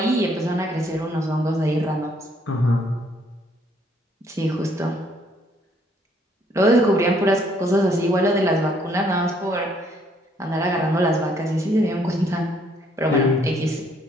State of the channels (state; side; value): normal; both; correlation 0.66